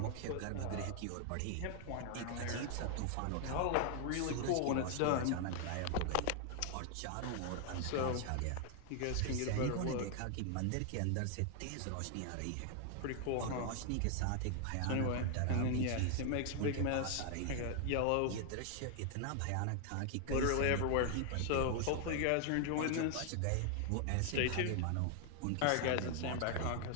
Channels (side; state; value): both; different; correlation 0.00